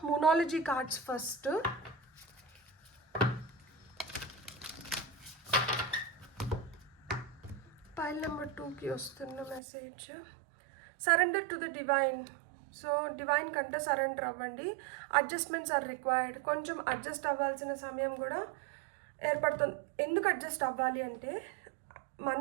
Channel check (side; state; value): left; drops out; at 9.6 s